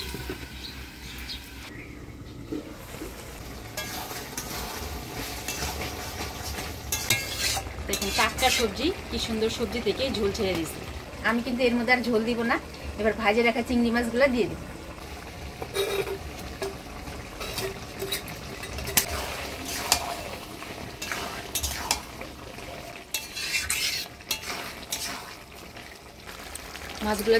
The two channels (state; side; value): identical; both; correlation 1.00